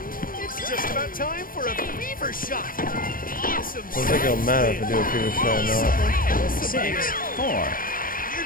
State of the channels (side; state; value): right; late; 0.41 ms